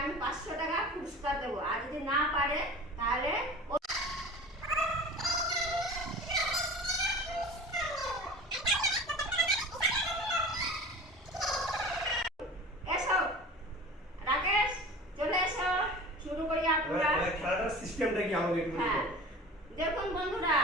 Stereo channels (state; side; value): normal; both; correlation 0.38